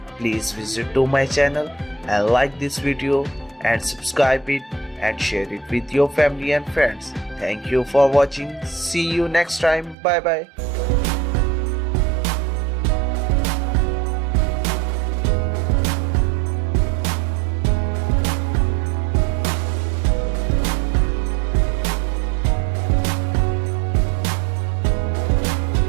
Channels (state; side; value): drops out; left; at 10.0 s